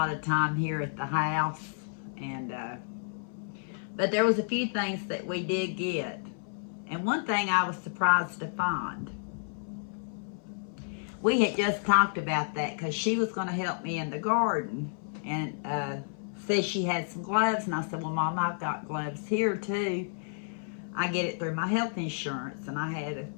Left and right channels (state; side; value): silent; right; 57 dB below the other